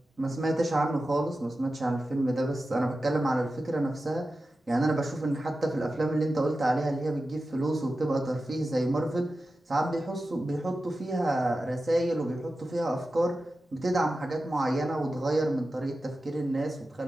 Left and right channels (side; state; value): both; normal; correlation 0.93